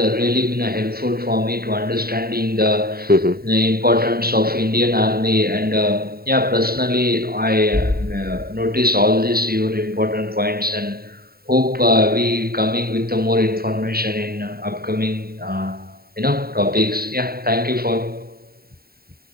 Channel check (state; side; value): late; left; 0.44 ms